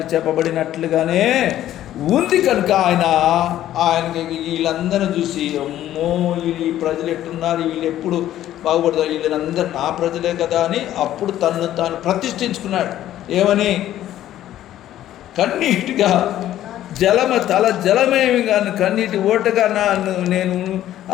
చెప్పబడినట్లుగానే ఉంది. కనుక ఆయనకి వీళ్ళందరూ చూసి, అమ్మో ఈ ప్రజలు ఎట్టున్నారు, వీళ్ళు ఎప్పుడు బాగుపడతారు, వీళ్ళందరూ నా ప్రజలే కదా అని అప్పుడు తను తాను ప్రతిష్ఠించుకున్నాడు. ఏమని? కన్నీటిగా జలమేమి కానీ కన్నీటి ఓటగా నేను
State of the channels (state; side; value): quieter; right; 12.7 dB